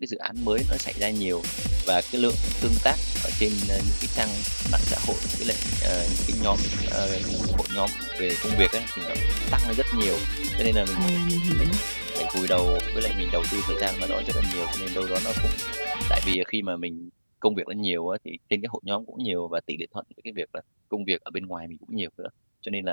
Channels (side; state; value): both; inverted; correlation -1.00